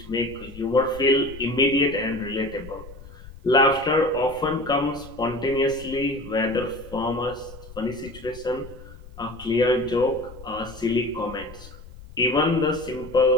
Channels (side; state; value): left; noise; rumble, 17 dB below the sound